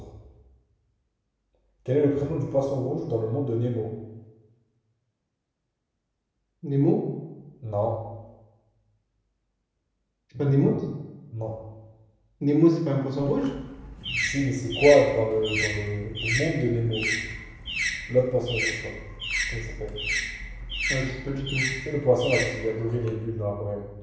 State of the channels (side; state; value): both; identical; correlation 1.00